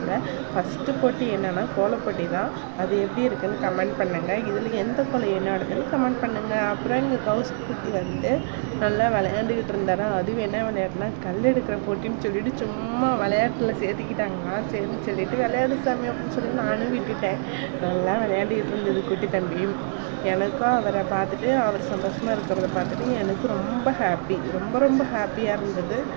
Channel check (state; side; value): silent; left; digital silence